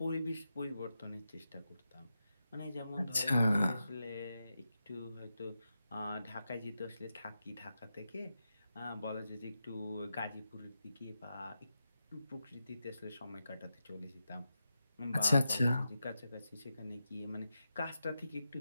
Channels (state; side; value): inverted; both; correlation -0.88